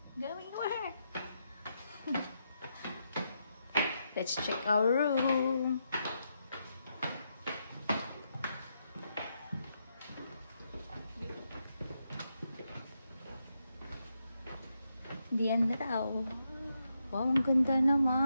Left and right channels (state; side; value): inverted; both; correlation -0.82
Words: going where? Let's check our room. Diyan na daw. Wow, ang ganda